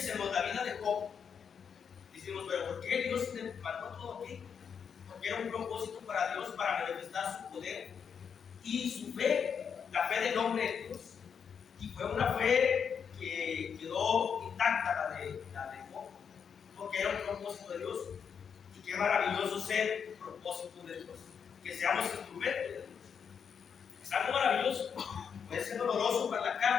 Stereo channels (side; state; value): right; quieter; 7.0 dB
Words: la vida de Job, decimos, pero ¿por qué Dios le mandó todo aquí? Porque era un propósito para Dios para manifestar su poder y su fe, la fe del hombre en Dios. Y fue una fe que quedó intacta, la de Job, porque era un propósito de Dios. Y qué maravilloso ser un propósito de Dios, que seamos instrumentos de Dios. Es algo maravilloso. Puede ser doloroso para la